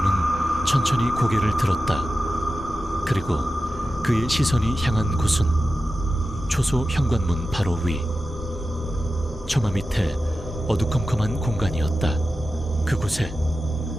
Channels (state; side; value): normal; both; correlation 0.93